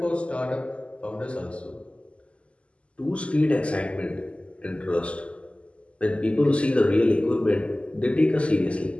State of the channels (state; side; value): late; right; 0.057 ms